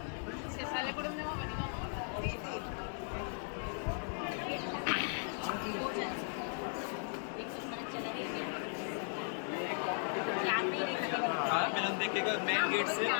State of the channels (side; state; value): right; silent; 53 dB below the other